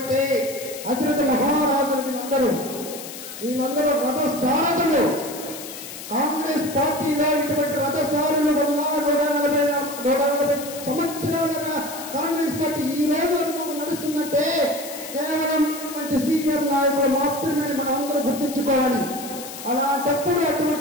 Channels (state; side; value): noise; left; hiss, 11 dB below the sound